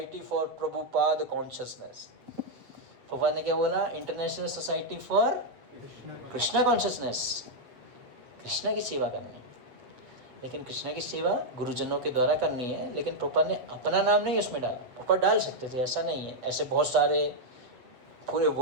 for Prabhupada consciousness. Prabhupada ने क्या बोला? International society for Krishna consciousness. Krishna की सेवा करनी है। लेकिन कृष्णा की सेवा गुरुजनों के द्वारा करनी है। लेकिन प्रभुपाद ने अपना नाम नहीं उसमें डाला। प्रभुपाद डाल सकते थे, ऐसा नहीं है। ऐसे बहुत सारे पूरे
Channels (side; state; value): left; late; 8.1 ms